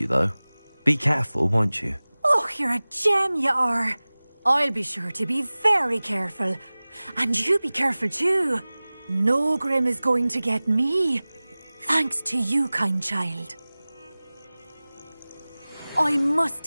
though. Be careful, won't you? Oh, you're a gem, you are. I'll be sure to be very careful. And you be careful too. No Grim is going to get me. Thanks to you, kind child. I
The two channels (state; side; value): inverted; both; correlation -0.99